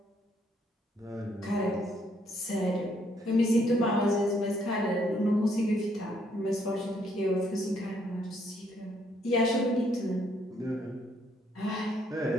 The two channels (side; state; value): both; normal; correlation 0.70